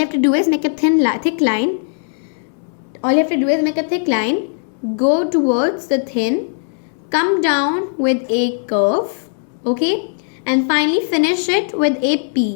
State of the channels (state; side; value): silent; right; 64 dB below the other